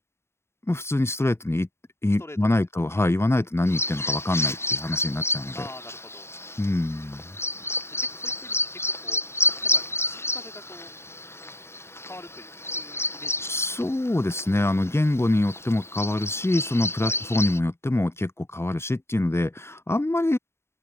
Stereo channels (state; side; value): late; right; 0.12 ms